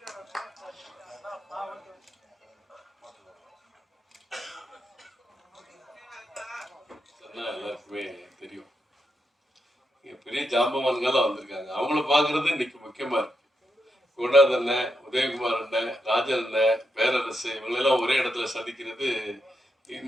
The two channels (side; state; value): both; normal; correlation 0.84